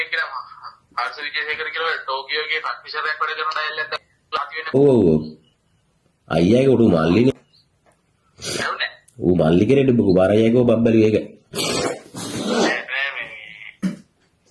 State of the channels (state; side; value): identical; both; correlation 1.00